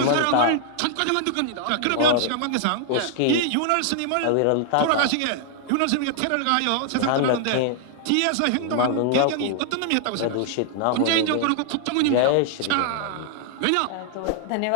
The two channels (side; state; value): both; different; correlation 0.00